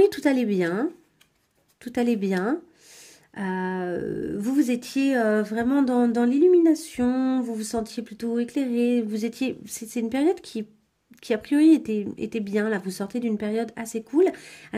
tout allait bien. Tout allait bien. Vous étiez vraiment dans l'illumination, vous vous sentiez plutôt éclairé, c'est une période qui a priori était bien, là, vous sortez d'une période assez cool.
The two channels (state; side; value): identical; both; correlation 1.00